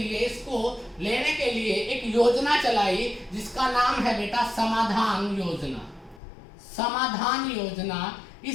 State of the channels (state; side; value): drops out; right; at 6.2 s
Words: इसको लेने के लिए एक योजना चलाई जिसका नाम है बेटा समाधान योजना। समाधान योजना।